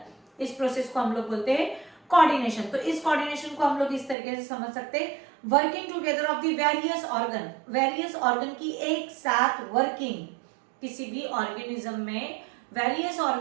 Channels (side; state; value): left; drops out; at 4.2 s